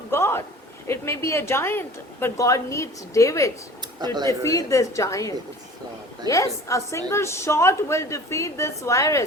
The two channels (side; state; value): both; normal; correlation 0.43